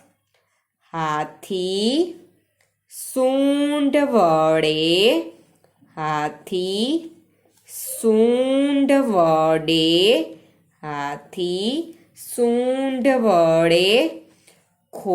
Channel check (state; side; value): identical; both; correlation 1.00